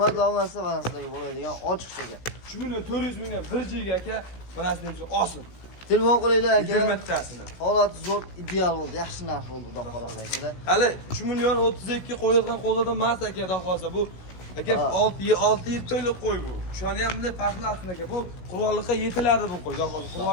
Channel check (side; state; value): right; late; 16 ms